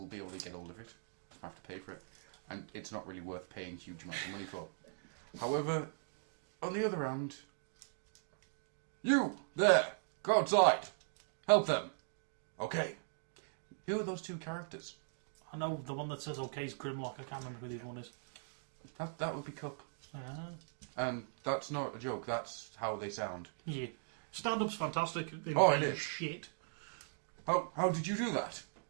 be able to get hold of it. You have to pay for it. And it's not really worth paying huge amounts of money for. However, on the other hand, you, there, go outside. Help them. Okay. Who are those two characters? I know the one that says OK is Grimlock. I can't remember who the other one is. That would be Cup. And that's not a joke. That's how they sound. Yeah. Stand-up's fantastic. Oh, it is. Shit. How did you do that?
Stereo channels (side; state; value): left; silent; digital silence